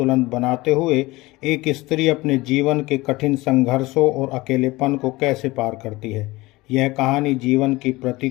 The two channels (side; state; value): right; quieter; 20.7 dB